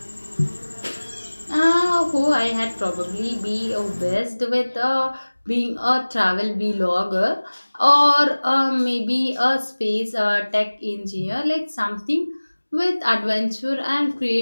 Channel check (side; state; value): both; inverted; correlation -1.00